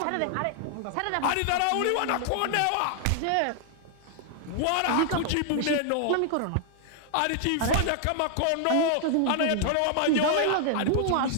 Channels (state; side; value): different; both; correlation -0.01